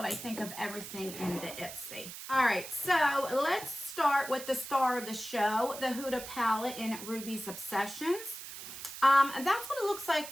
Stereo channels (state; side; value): noise; right; hiss, 11 dB below the sound